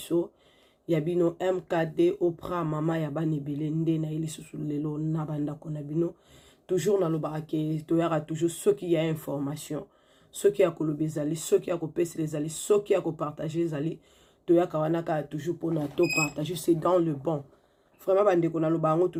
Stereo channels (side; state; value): both; identical; correlation 1.00